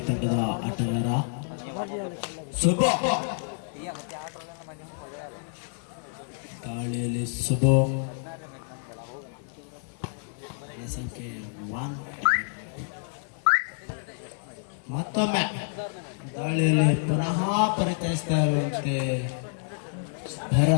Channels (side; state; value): right; silent; 59 dB below the other